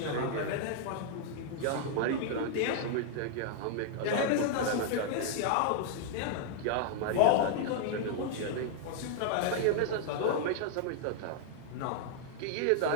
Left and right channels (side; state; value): both; different; correlation -0.01